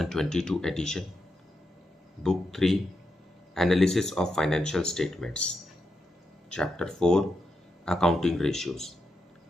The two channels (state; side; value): normal; both; correlation 0.85